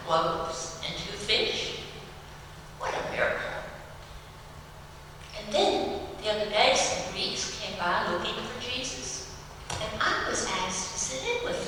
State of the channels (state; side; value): identical; both; correlation 1.00